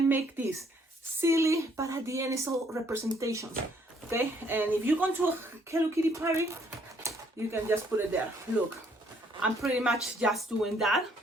make this silly, but at the end it's all representations. Okay, and if you go to a Hello Kitty party, you can just put it there. Look, I'm pretty much just doing that.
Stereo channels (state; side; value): normal; both; correlation 0.66